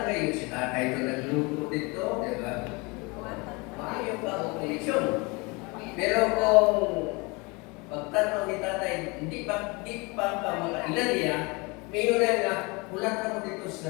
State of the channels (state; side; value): quieter; right; 27.4 dB